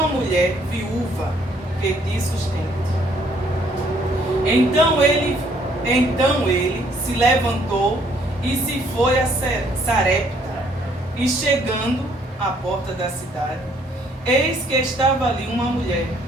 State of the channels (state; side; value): normal; both; correlation 0.65